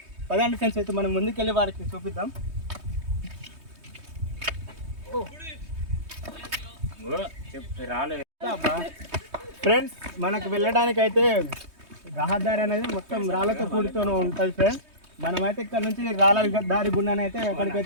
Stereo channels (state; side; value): late; left; 3.2 ms